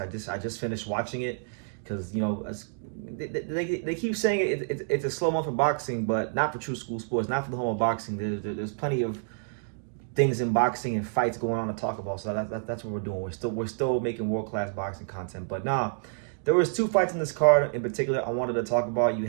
I just finished watching it because you know they keep saying it's a slow month for boxing, but not for True School Sports, not for the home of boxing. There's plenty of things in boxing and fights going on to talk about. So that's what we're doing. We're still making world-class boxing content. But nah, there was two fights in this card in particular I wanted to talk about. You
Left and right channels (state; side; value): silent; left; digital silence